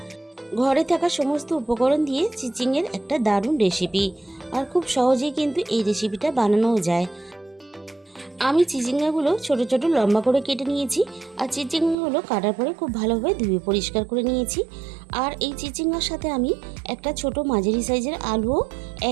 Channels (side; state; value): left; drops out; at 12.0 s